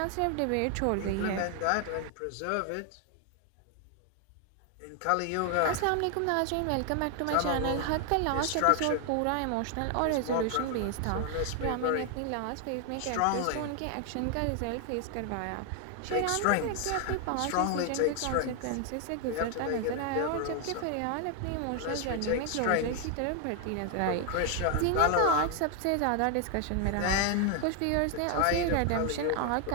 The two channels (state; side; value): different; both; correlation 0.00